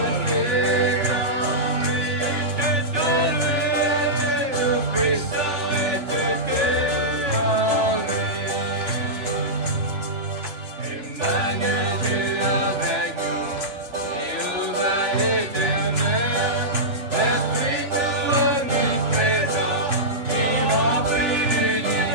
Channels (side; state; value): left; late; 3.4 ms